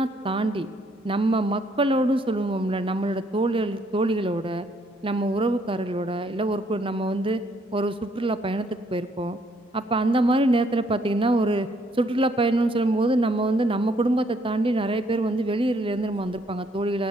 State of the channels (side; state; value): both; normal; correlation 0.68